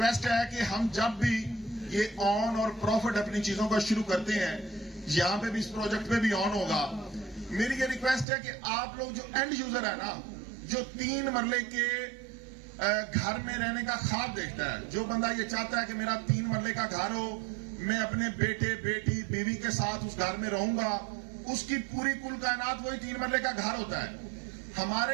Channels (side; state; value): left; drops out; at 8.2 s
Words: है कि हम जब भी ये ऑन और प्रॉफिट अपनी चीजों का शुरू करते हैं, यहां पे भी, इस प्रोजेक्ट पे भी ऑन होगा, मेरी ये रिक्वेस्ट है कि आप लोग जो एंड यूजर है ना, जो 3 मरले के घर में रहने का ख्वाब देखता है, जो बंदा ये चाहता है कि मेरा 3 मरले का घर हो, मैं अपने बेटे, बेटी, बीवी के साथ उस घर में रहूंगा, उसकी पूरी कुल कायनात वही 3 मरले का घर होता है।